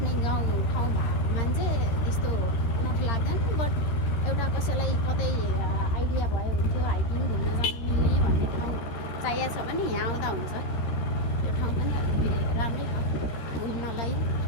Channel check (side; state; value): right; late; 13 ms